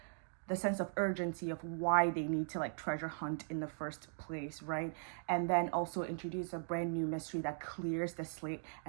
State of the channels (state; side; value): silent; left; digital silence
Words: the sense of urgency of why they need to like treasure hunt in the first place, right? And then also introduce a brand new mystery that clears the slate